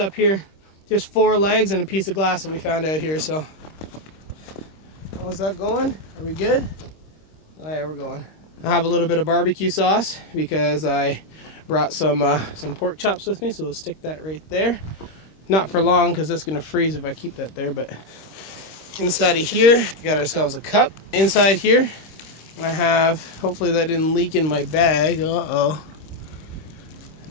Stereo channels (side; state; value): right; late; 26 ms